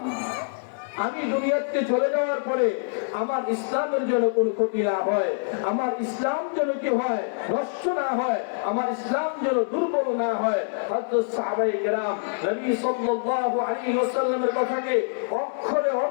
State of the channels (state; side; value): silent; right; 57 dB below the other